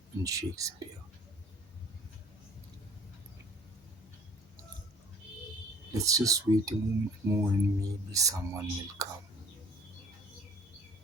in Shakespeare. Let's just wait a moment more and maybe someone will come.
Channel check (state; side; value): normal; both; correlation 0.51